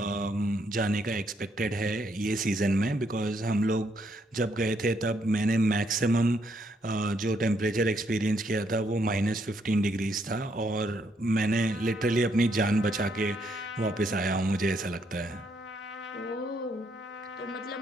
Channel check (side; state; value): both; normal; correlation 0.73